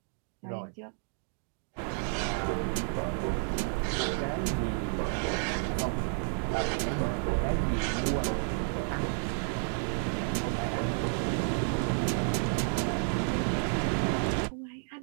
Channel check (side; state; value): left; silent; 57 dB below the other